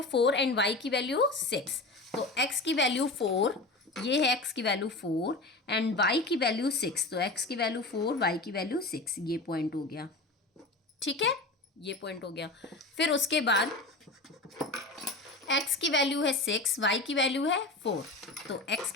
4 एंड y की वैल्यू 6। तो x की वैल्यू 4, ये है x की वैल्यू 4 एंड y की वैल्यू 6। तो x की वैल्यू 4, y की वैल्यू 6, ये पॉइंट हो गया। ठीक है, ये पॉइंट हो गया। फिर उसके बाद x की वैल्यू है 6, y की वैल्यू है 4। तो x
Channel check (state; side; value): quieter; right; 3.1 dB